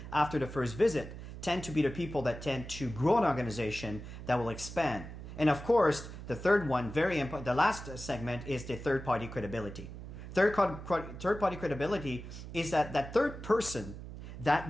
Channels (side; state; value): right; noise; hum, 11 dB below the sound